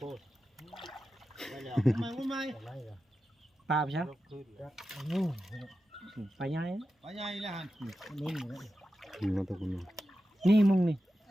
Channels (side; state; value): both; normal; correlation 0.91